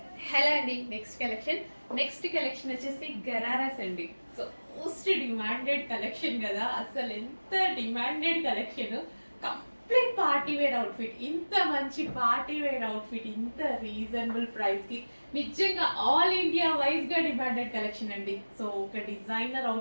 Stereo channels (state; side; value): inverted; both; correlation -1.00